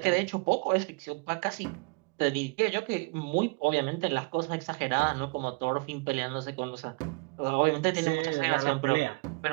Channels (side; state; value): left; quieter; 30.1 dB